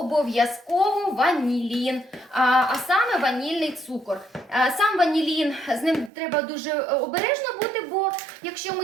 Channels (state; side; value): drops out; left; at 6.1 s